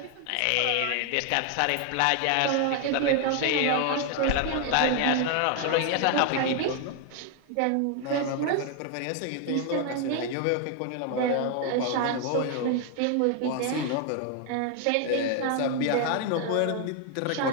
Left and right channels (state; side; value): different; both; correlation 0.00